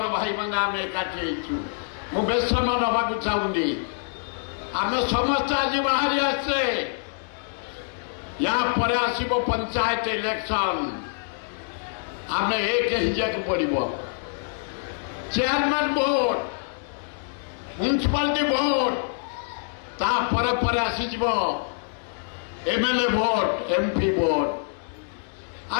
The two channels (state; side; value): silent; right; digital silence